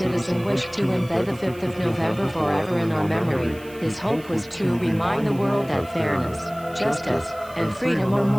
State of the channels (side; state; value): right; noise; hiss, 23 dB below the sound